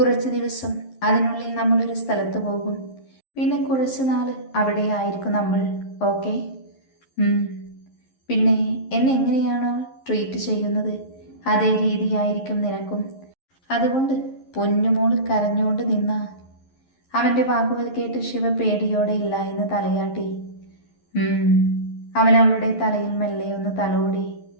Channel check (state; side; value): late; right; 11 ms